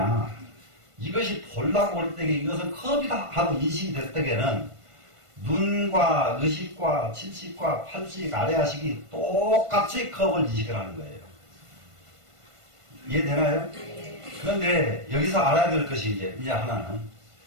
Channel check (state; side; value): late; left; 1.5 ms